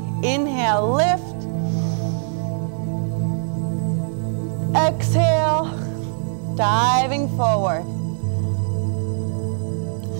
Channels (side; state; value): left; silent; digital silence